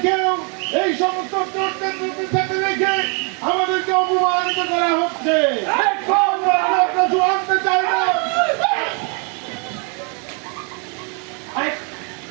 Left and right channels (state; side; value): quieter; left; 36.2 dB